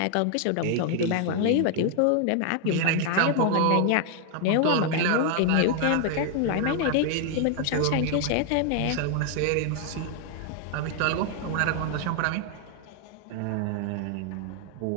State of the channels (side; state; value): both; different; correlation 0.00